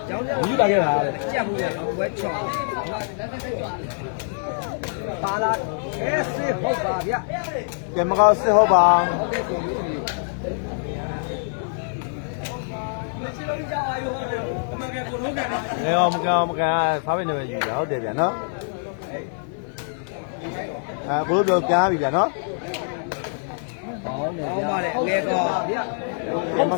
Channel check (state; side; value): silent; right; digital silence